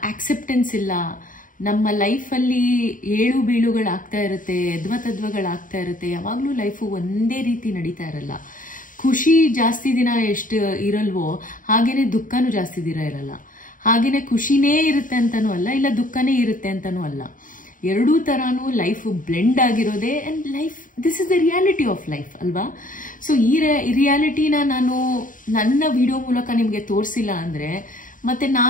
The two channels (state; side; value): late; right; 0.39 ms